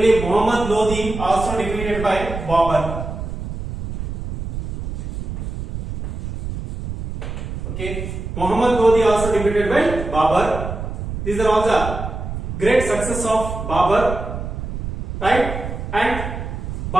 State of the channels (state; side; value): noise; right; rumble, 6 dB below the sound